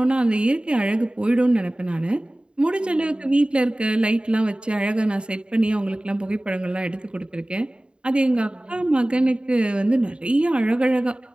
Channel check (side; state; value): left; late; 0.053 ms